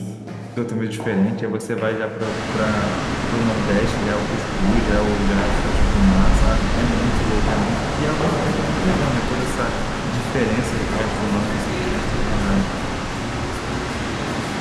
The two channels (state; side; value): identical; both; correlation 1.00